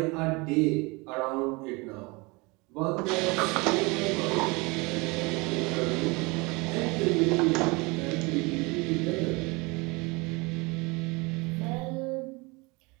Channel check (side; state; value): left; quieter; 26.4 dB